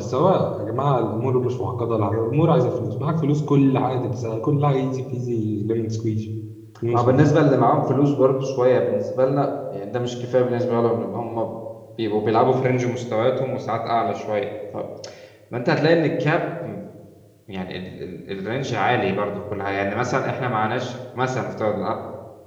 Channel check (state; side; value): identical; both; correlation 1.00